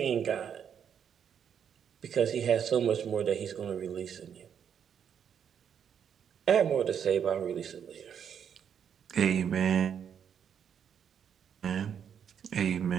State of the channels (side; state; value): left; quieter; 8.1 dB